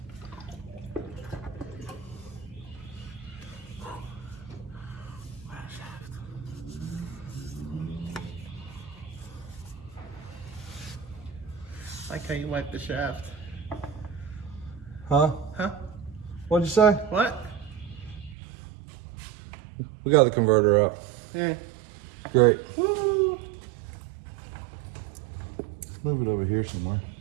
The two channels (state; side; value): drops out; left; at 18.4 s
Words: I like how you wipe the shaft. Huh? Huh? What'd you say? What? We got the converter out. Yeah. Great. Woo! Move it over here somewhere.